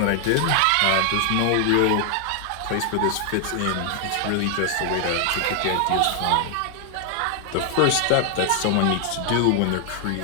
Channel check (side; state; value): both; different; correlation 0.00